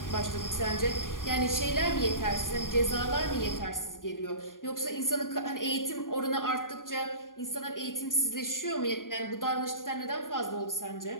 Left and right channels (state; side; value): late; right; 0.90 ms